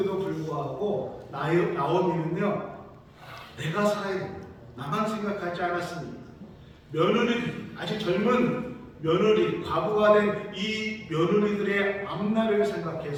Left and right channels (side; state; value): both; identical; correlation 1.00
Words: 불구하고 나오미는요 내가 살아야 된다, 나만 생각하지 않았습니다. 며느리, 아직 젊은 며느리, 과부가 된 이 며느리들의 앞날을